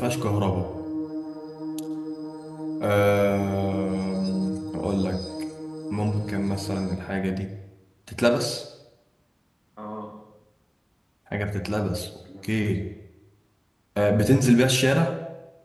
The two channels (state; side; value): identical; both; correlation 1.00